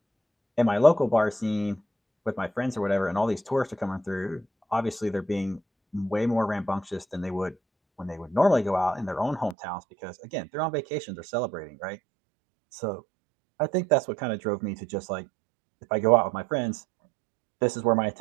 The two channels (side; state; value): left; drops out; at 9.6 s